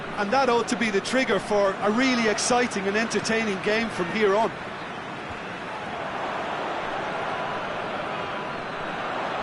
And that ought to be the trigger for a really exciting and entertaining game from here on.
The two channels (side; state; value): both; identical; correlation 1.00